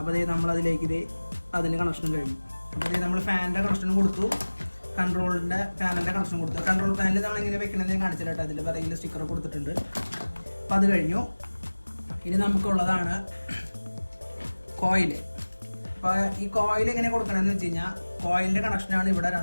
നമ്മളതിലേക്ക് അതിൻ്റെ കണക്ഷനും കഴിഞ്ഞു. അപ്പോൾ നമ്മൾ ഫാനിൻ്റെ കണക്ഷനും കൊടുത്തു, പാനലിൻ്റെ കണക്ഷൻ കൊടുത്തു. കൺട്രോൾ പാനൽ നമ്മൾ എങ്ങനെ വെക്കണമെന്ന് കാണിച്ചിട്ട് അതിൽ പിറകിൽ സ്റ്റിക്കർ കൊടുത്തിട്ടുണ്ട്. അപ്പോൾ അത് കഴിഞ്ഞു. ഇനി നമുക്കുള്ളതാണ് കോയിൽ. അപ്പോൾ ഈ കോയിൽ എങ്ങനെ കൊടുക്കണമെന്ന് വെച്ച് കഴിഞ്ഞാൽ, കോയിലിൻ്റെ കണക്ഷനാണ് ഇവിടെ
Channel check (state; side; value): inverted; both; correlation -1.00